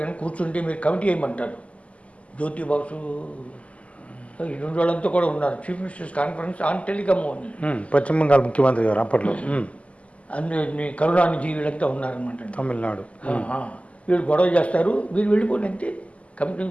కానీ కూర్చుంటే మీరు కమిటీ వేయమంటారు. జ్యోతి బాసు ఈ 2 వాళ్ళంతా కూడా ఉన్నారు. Chief ministers conference on telecom అని. పశ్చిమ బెంగాల్ ముఖ్యమంత్రి గారు అప్పట్లో. అందులో కరుణానిధి వీళ్ళంతా ఉన్నారనమాట. తమిళనాడు. వీళ్ళు గొడవ చేస్తారు, వీళ్ళు వెళ్ళిపోండి అంతే. కమిటీ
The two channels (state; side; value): late; right; 0.065 ms